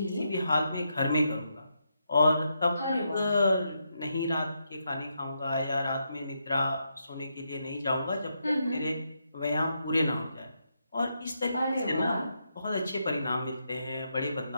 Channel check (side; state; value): both; inverted; correlation -0.82